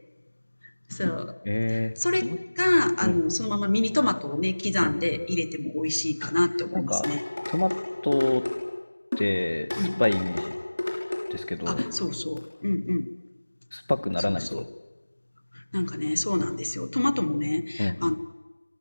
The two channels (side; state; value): both; inverted; correlation -1.00